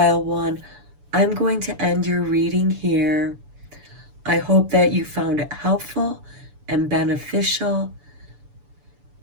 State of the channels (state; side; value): late; left; 6.9 ms